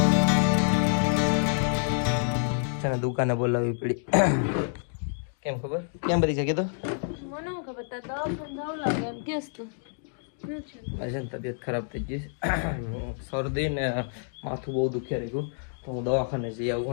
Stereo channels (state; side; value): silent; right; digital silence